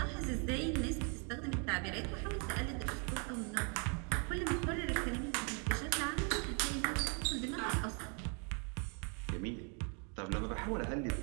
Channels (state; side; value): quieter; left; 37.4 dB